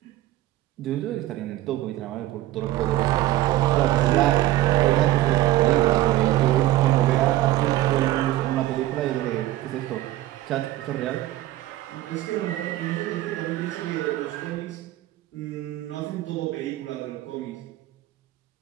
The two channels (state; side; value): quieter; left; 15.4 dB